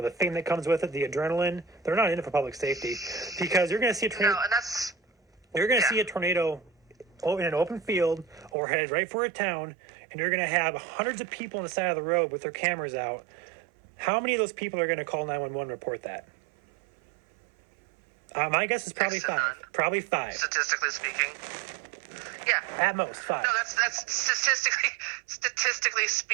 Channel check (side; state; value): left; drops out; at 8.6 s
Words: fame that comes with it, the adrenaline. They're not in it for public safety because you're going to see a tornado. No, and that's You're going to see a tornado in an open field or headed right for a town, and you're going to have hundreds of people on the side of the road with their cameras out. How many of those people are going to call 911 and report that? My guess is probably five. Probably five. Statistically speaking. Yeah. At most, five. No, that's statistically